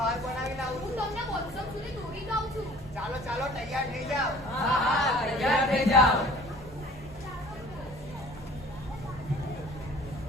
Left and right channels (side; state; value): both; normal; correlation 0.49